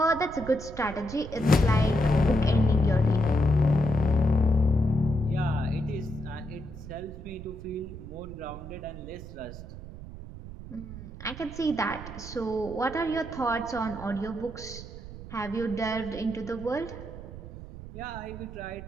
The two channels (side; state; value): right; noise; rumble, 12 dB below the sound